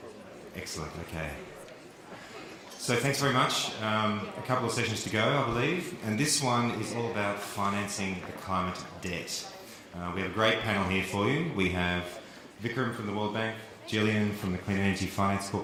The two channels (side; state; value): both; identical; correlation 1.00